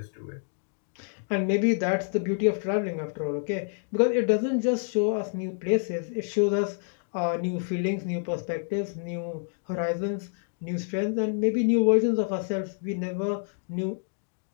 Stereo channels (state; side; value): silent; right; digital silence